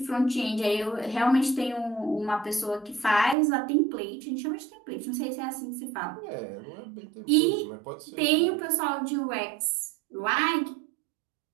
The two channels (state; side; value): drops out; left; at 3.4 s